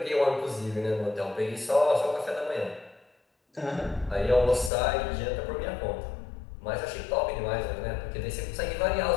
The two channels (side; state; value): right; drops out; at 4.7 s